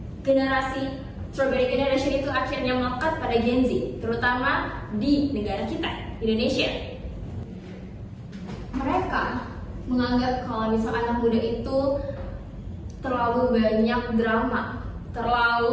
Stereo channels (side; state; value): both; identical; correlation 1.00